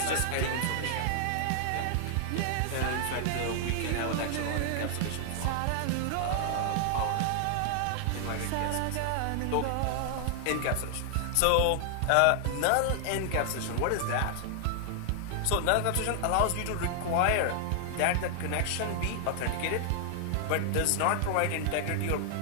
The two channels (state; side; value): different; both; correlation 0.00